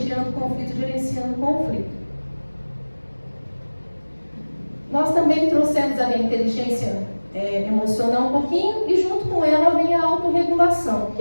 conflito, gerenciando conflito. Nós também trouxemos a inteligência emocional um pouquinho e junto com ela vem a autorregulação. O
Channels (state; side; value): inverted; both; correlation -1.00